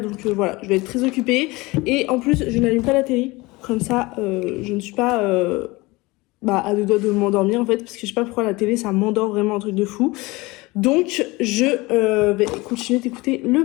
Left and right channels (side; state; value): right; quieter; 22.5 dB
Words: donc voilà, je vais être très occupée. Et en plus, je n'allume pas la télé, comme ça, je ne suis pas... à deux doigts de m'endormir en fait, parce que je sais pas pourquoi la télé ça m'endort vraiment, un truc de fou. Donc je vais continuer d'écouter